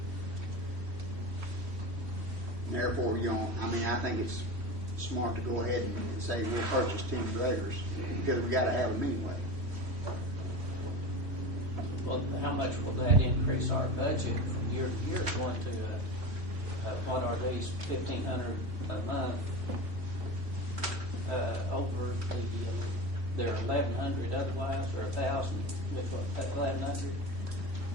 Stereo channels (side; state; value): left; late; 3.1 ms